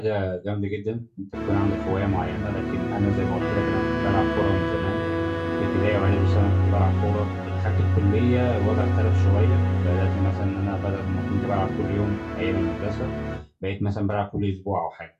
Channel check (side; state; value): both; identical; correlation 1.00